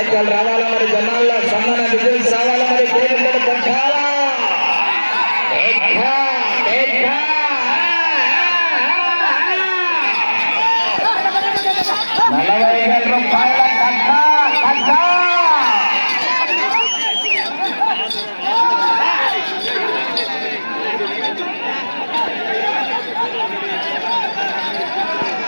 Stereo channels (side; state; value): both; inverted; correlation -1.00